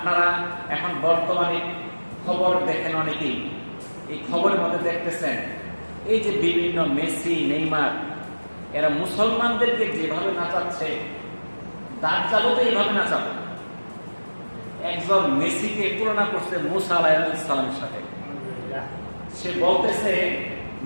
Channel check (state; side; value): inverted; both; correlation -1.00